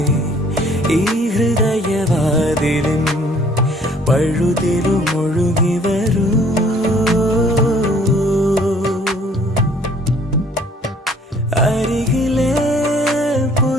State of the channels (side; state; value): both; normal; correlation 0.58